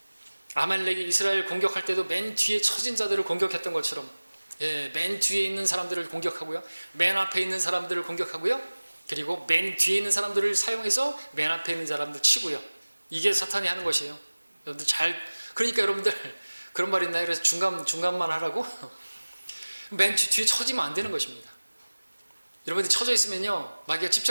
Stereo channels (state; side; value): inverted; both; correlation -1.00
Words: 아말렉이 이스라엘 공격할 때도 맨 뒤에 처진 자들을 공격했던 것처럼, 맨 뒤에 있는 사람들을 공격하고요, 맨 앞에 있는 사람들을 공격하고요, 그리고 맨 뒤에 있는 사람들을 사용해서 맨 앞에 있는 사람들 치고요. 이게 사탄이 하는 것이에요. 여러분들 그러니까 여러분들 그런 말 있나요? 그래서 중간만 하라고? 맨 뒤에 처지면 안 되는 것입니다. 여러분들이 처져 있으면요, 마귀가